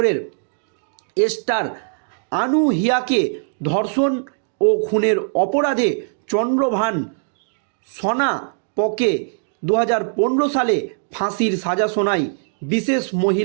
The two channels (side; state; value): left; silent; digital silence